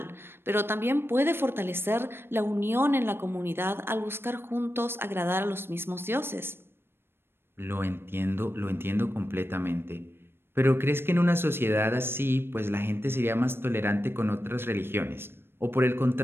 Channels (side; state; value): left; late; 0.11 ms